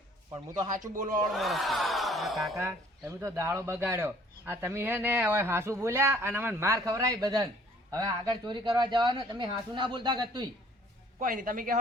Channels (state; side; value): normal; both; correlation 0.57